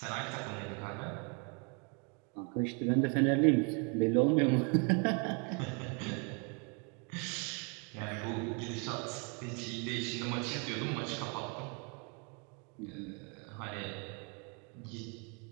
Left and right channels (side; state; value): left; quieter; 35.5 dB